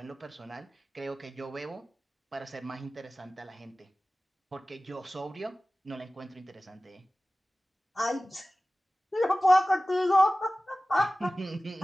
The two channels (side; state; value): both; normal; correlation 0.97